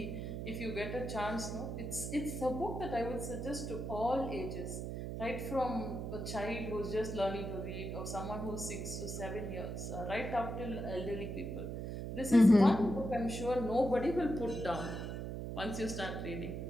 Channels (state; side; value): noise; right; hum, 5 dB below the sound